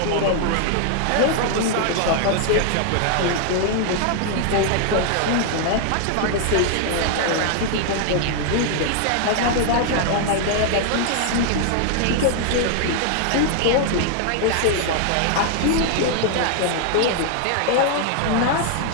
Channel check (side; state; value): both; different; correlation 0.00